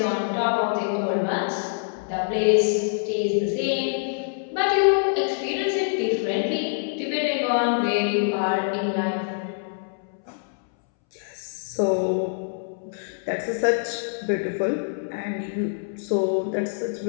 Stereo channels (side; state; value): right; silent; 62 dB below the other